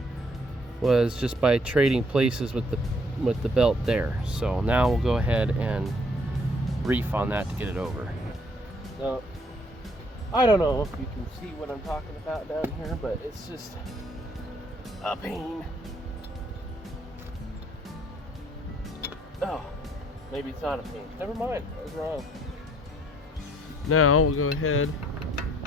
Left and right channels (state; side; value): normal; both; correlation 0.65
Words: was just by trading places with the belt there. So now we'll go ahead and reef on that to get it over. Now, I don't know if you can see what I'm talking about down here, but it's just a pain. Oh, maybe it's not a pain. Never mind, I was wrong. Now we'll go ahead